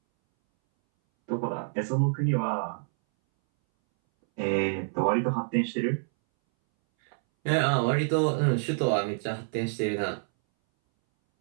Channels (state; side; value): silent; left; 60 dB below the other